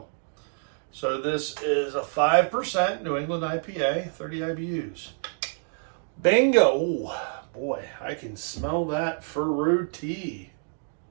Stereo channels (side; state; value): left; silent; 60 dB below the other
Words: So this is a 5% New England IPA, 30 IBUs. Bingo! Ooh, boy, I can smell that fruity.